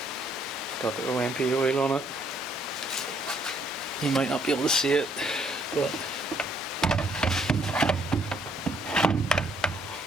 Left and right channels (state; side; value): normal; both; correlation 0.67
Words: got the OMP oil on it. You might not be able to see it, but